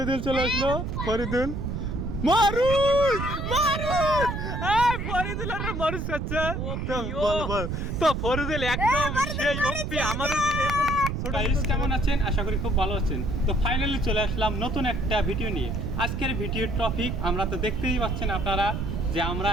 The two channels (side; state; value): right; noise; rumble, 3 dB below the sound